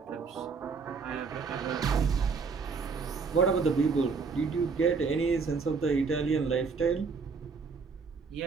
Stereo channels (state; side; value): quieter; left; 5.0 dB